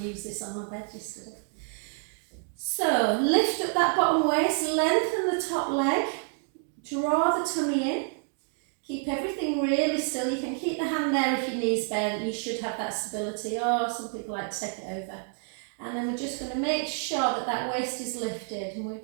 used this on my bed yesterday. So, lift up that bottom waist, lengthen the top leg, draw the tummy in. Keep everything really still. You can keep the hand there if your knees bent. You should have that stability, or some people like to take it over. And then we're just going to make sure that that waist is lifted. And we're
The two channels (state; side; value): silent; left; 55 dB below the other